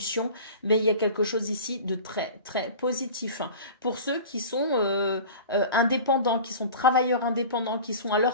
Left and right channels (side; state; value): both; inverted; correlation -0.37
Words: mais il y a quelque chose ici de très, très positif. Pour ceux qui sont indépendants, qui sont travailleurs indépendants, qui sont à